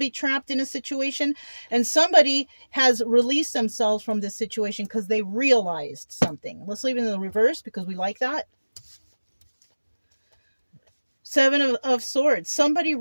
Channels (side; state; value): both; inverted; correlation -1.00